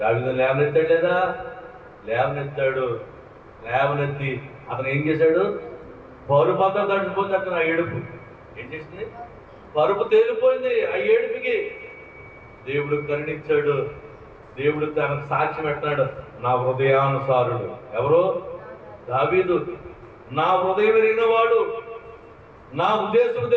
లేవనెత్తాడు లేదా? లేవనెత్తాడు. లేవనెత్తి అతను ఏం చేశాడు? పరుపు అంతా తడిచిపోతే అతను ఆ ఏడుపు ఏం చేసింది? పరుపు తేలిపోయింది. ఆ ఏడుపుకి దేవుడు కరుణించాడు. దేవుడు తనకు సాక్షి పెట్టాడు, నా హృదయానుసారుడు. ఎవరు? దావీదు. నా హృదయం ఎరిగినవాడు, నా ఉద్దేశం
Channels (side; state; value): both; identical; correlation 1.00